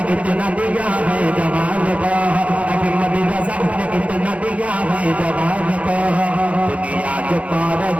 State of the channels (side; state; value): left; late; 0.064 ms